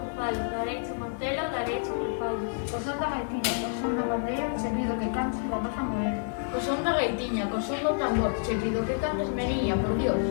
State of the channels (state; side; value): silent; right; digital silence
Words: falo, dareiche montelo, dareiche un fallo. O son da gaitiña, o son da pandeira, che pido que cantes rapaza morena. Co son da gaitiña, co son do tambor, che pido que cantes meniña, por Dios.